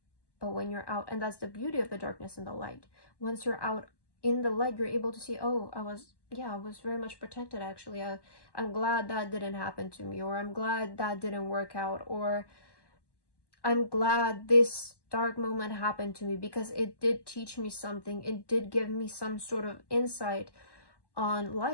But when you're out, and that's the beauty of the darkness and the light. Once you're out in the light, you're able to see, oh, I was very much protected, actually. I'm glad that didn't happen to me, or I'm glad that didn't work out, or I'm glad this dark moment happened to me because it did teach me something. It did give me some sort of insight on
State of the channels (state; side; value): late; right; 1.1 ms